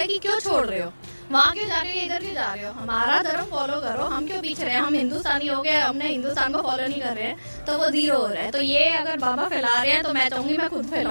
कि क्यों छोड़ रहे हो, वहाँ क्यों जा रहे हो, इधर क्यों जा रहे हो, हमारा धर्म फॉलो करो, हम क्यों पीछे रहे हैं, हम हिंदुस्तानी हो गए, हमने हिंदुस्तान को फॉलो नहीं कर रहे हैं तो वो जीरो हो रहा है। तो ये अगर बाबा फैला रहे हैं तो मैं चाहूंगी मैं खुद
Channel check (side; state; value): both; inverted; correlation -1.00